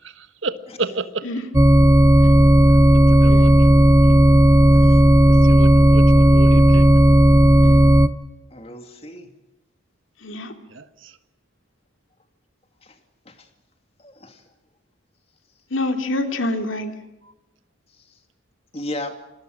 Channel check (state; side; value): normal; both; correlation 0.93